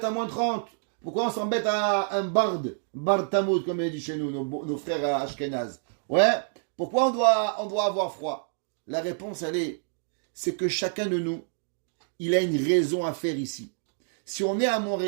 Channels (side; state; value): left; silent; digital silence